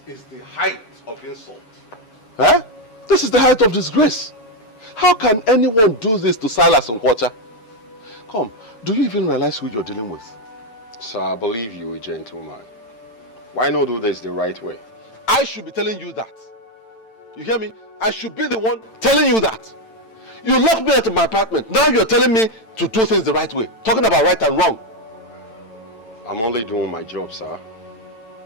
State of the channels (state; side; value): late; right; 9.0 ms